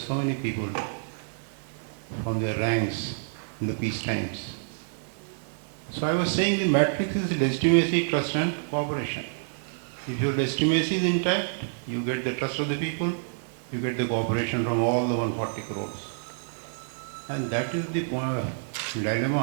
so many people from their ranks in the peace times. So I was saying the matrix is legitimacy, trust and cooperation. If your legitimacy is intact, you get the trust of the people, you get the cooperation from all the 140 crores. And that is the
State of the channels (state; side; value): silent; left; digital silence